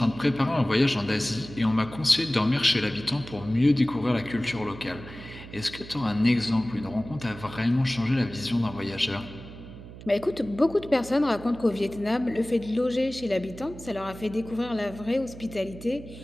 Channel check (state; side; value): noise; right; hum, 15 dB below the sound